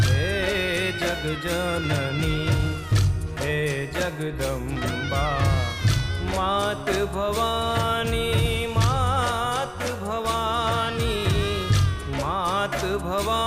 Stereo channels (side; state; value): both; identical; correlation 1.00